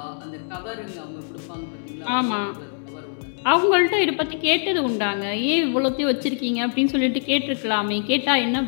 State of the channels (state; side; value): silent; right; digital silence